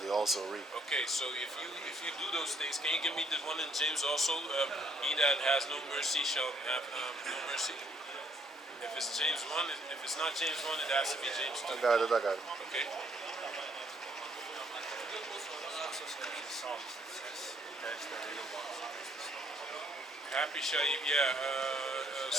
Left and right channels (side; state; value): both; normal; correlation 0.67